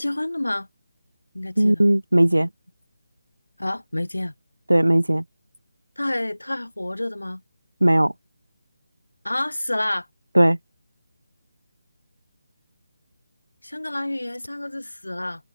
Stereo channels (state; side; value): inverted; both; correlation -1.00